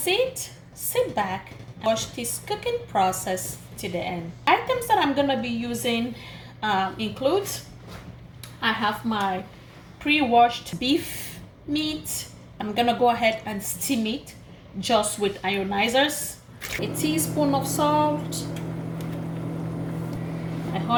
sit back, and watch this cooking process to the end. Items that I'm gonna be using includes I have my pre-washed beef meat. I'm gonna go ahead and steam it just with ionizers. A teaspoon of salt, a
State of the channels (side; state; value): both; identical; correlation 1.00